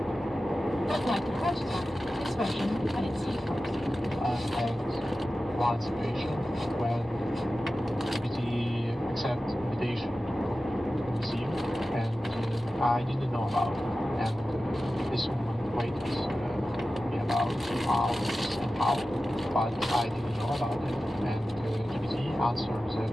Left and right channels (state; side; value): normal; both; correlation 0.94